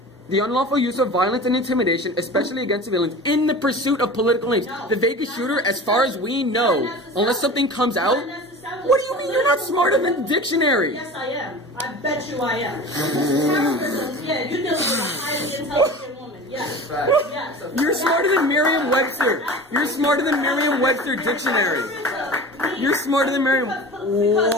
The unlawful use of violence and intimidation, especially against civilians, in the pursuit of political aims. The Vegas shooter, as far as we know, unless something comes out, what do you mean you're not smarter than the dictionary? Yes, I am. I bet you I am. Yeah, you're dealing with a highly intelligent woman. Yes. Yes. You're smarter than Merriam-Webster. You're smarter than Merriam-Webster dictionary. You're smarter than Merriam.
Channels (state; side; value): normal; both; correlation 0.36